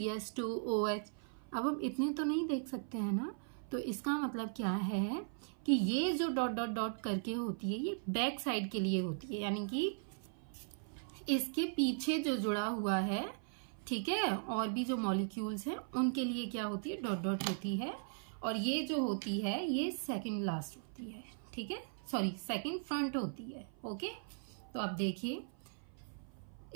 OH, अब हम इतने तो नहीं देख सकते हैं ना। तो इसका मतलब क्या है कि ये जो डॉट डॉट डॉट करके होती है ये बैक साइड के लिए होती है, यानी कि इसके पीछे जो जुड़ा हुआ है, ठीक है, और भी जो मॉलिक्यूल्स हैं उनके लिए क्या होती है, डॉट डॉट होती है। और ये जो होती है ये सेकंड लास्ट होती है, ठीक है, सॉरी सेकंड फ्रंट होती है, ओके। तो अब देखिए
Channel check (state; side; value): silent; left; 52 dB below the other